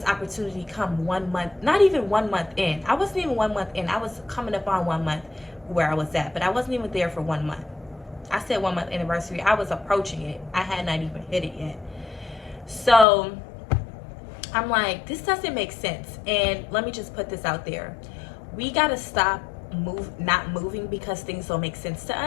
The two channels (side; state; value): right; drops out; at 13.1 s